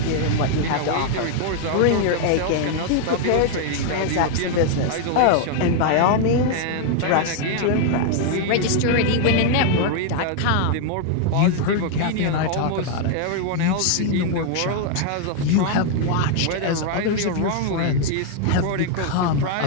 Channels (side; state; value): both; different; correlation 0.00